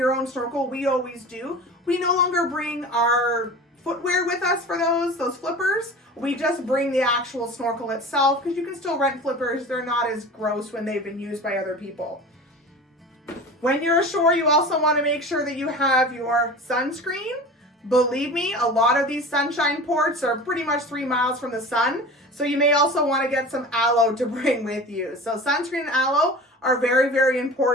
own snorkel. We always do. We no longer bring our footwear with us for those flippers. We just bring the actual snorkel itself because you can still rent flippers. They're not as gross when they've been used by other people. When you're ashore, you also want to make sure that you have your sunscreen. Believe me, a lot of these sunshine ports are pretty much 3 miles from the sun, so you may also want to get some aloe to bring with you. So sunscreen and aloe are very, very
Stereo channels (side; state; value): both; normal; correlation 0.36